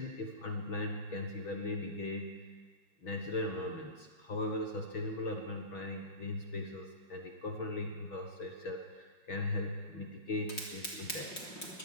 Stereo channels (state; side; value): late; right; 5.5 ms